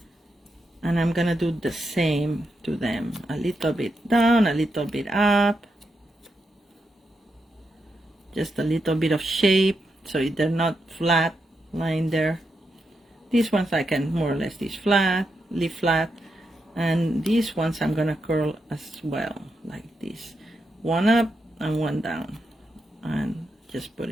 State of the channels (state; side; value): normal; both; correlation 0.84